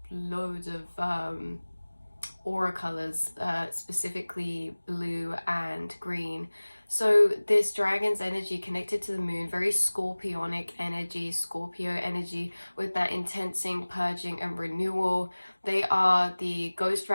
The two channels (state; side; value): inverted; both; correlation -1.00